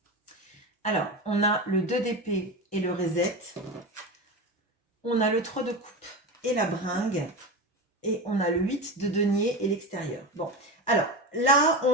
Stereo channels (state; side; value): normal; both; correlation 0.23